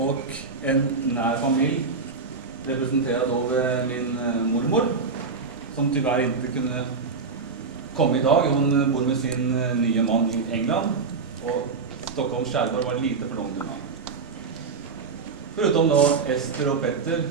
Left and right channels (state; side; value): quieter; left; 4.8 dB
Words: en nær familj representerad av min mormor som tyvärr inte kunde komma idag. Hon bor med sin nya man i England och Stockholms skärgård var lite för långt undan. Förutom då Ester och Petter